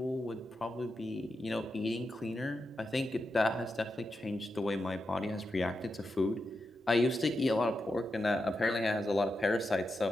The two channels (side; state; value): both; normal; correlation 0.88